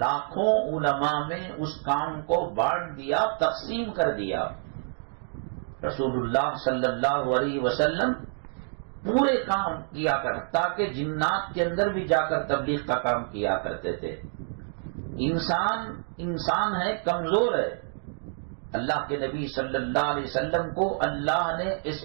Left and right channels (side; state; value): left; silent; 60 dB below the other